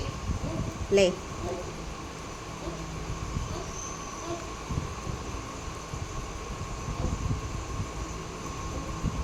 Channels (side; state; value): both; identical; correlation 1.00